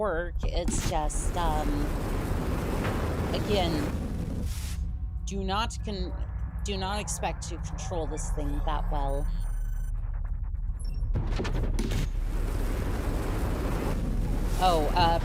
It's just again, do not expect to control this thing that well. Oh,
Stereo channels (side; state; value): both; identical; correlation 1.00